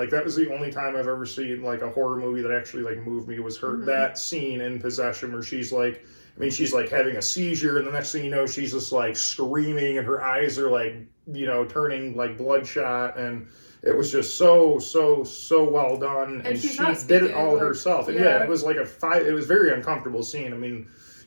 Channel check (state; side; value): inverted; both; correlation -1.00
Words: that was the only time I've ever seen, like, a horror movie that actually, like, moved me was her, that scene in Possession where she's, like, I mean, she's, like, having a seizure, and the next thing you know, she's just, like, screaming, and her eyes are, like, you know, turning, like, bloodshot, and it was just so well done, and she did it all herself. And yeah, it was like it was very uncomfortable scene. I mean,